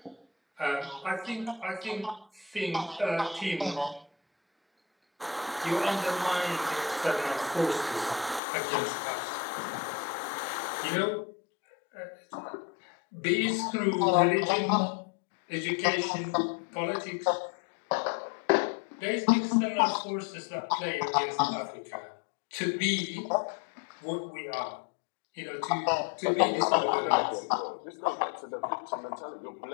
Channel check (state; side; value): drops out; right; at 8.4 s